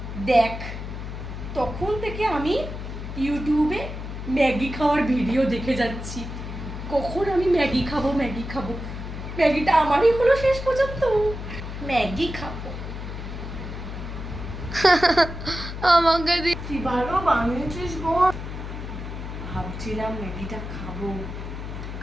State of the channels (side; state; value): left; noise; hum, 8 dB below the sound